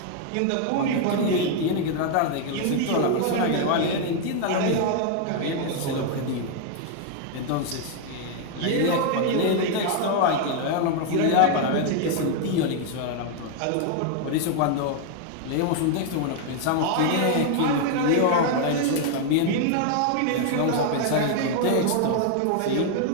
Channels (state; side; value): different; both; correlation 0.00